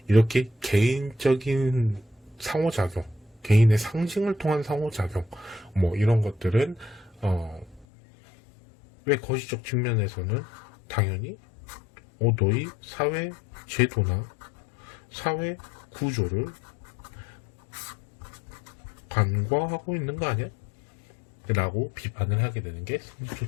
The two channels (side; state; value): right; drops out; at 7.9 s